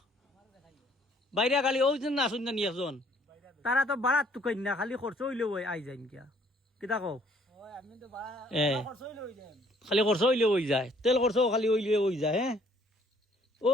বাইরে গাড়ি ওই জন না শুন একজন তারা তো বাড়াত তো কই না খালি খরচ হইলেও আই যাই কিয়া কিতা কও খালি খরচ হইলেও হয়ে যায় তেল খরচ খালি হইলেও হয়ে যায় হ্যাঁ ও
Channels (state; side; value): normal; both; correlation 0.62